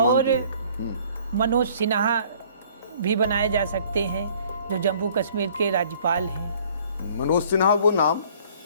मनोज सिन्हा भी बनाए जा सकते हैं, जो जम्मू कश्मीर के राज्यपाल हैं। मनोज सिन्हा वो नाम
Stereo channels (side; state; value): both; inverted; correlation -0.56